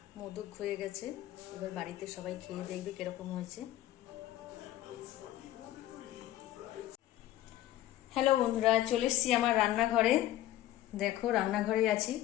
মোদক হয়ে গেছে, এবার বাড়িতে সবাই খেয়ে দেখবে কিরকম হয়েছে। হ্যালো বন্ধুরা, চলে এসছি আমার রান্নাঘরে। দেখো রান্নাঘরে আছি।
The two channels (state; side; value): quieter; right; 14.1 dB